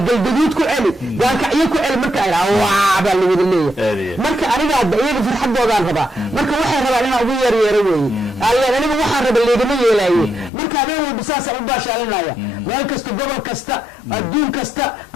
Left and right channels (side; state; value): right; drops out; at 10.5 s